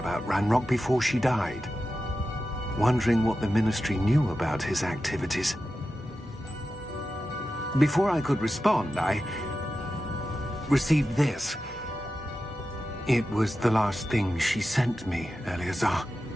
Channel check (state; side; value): normal; both; correlation 0.92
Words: Ranrock before she died, wondering what the Ministry knew about his activities. Before I could respond, I received this. It was the last thing she sent me, Eleazar.